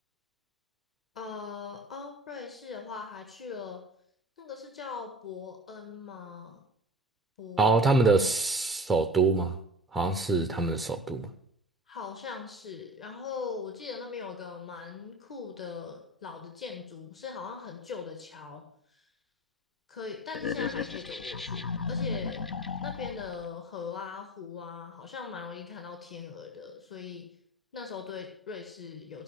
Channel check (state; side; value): normal; both; correlation 0.39